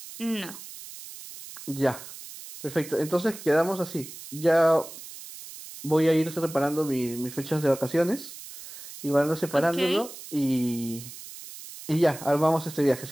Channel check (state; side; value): noise; right; hiss, 14 dB below the sound